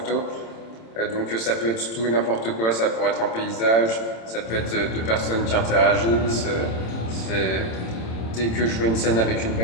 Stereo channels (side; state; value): right; late; 27 ms